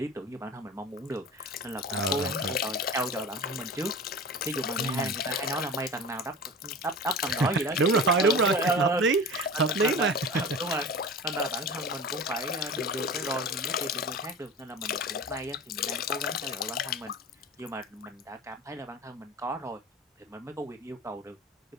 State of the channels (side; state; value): both; normal; correlation 0.34